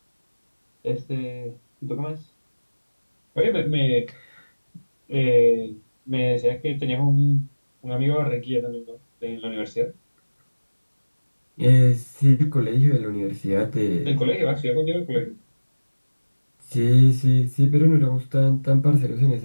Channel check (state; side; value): inverted; both; correlation -1.00